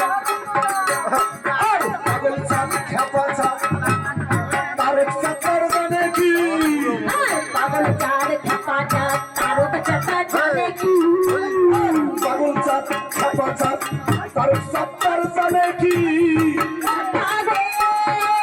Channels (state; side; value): identical; both; correlation 1.00